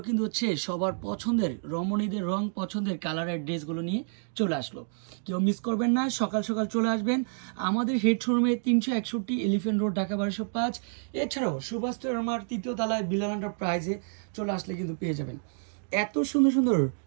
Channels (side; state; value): left; silent; digital silence